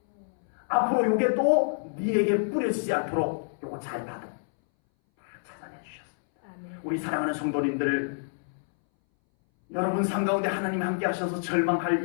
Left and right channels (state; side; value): silent; right; 60 dB below the other